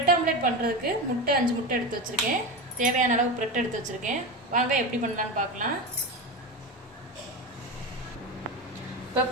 ஆம்லெட் பண்ணுறதுக்கு 5 முட்டை எடுத்து வச்சுருக்கேன். தேவையான அளவு பிரெட் எடுத்து வச்சுருக்கேன். வாங்க எப்படி பண்ணலான்னு பார்க்கலாம். இப்போ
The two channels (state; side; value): normal; both; correlation 0.21